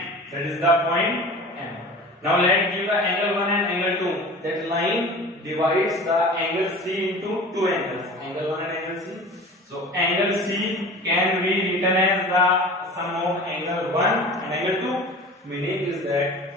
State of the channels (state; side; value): normal; both; correlation 0.38